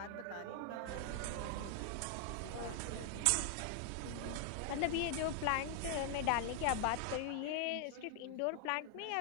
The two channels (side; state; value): both; different; correlation 0.00